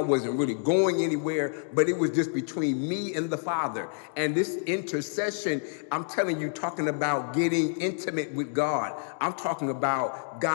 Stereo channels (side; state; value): right; silent; digital silence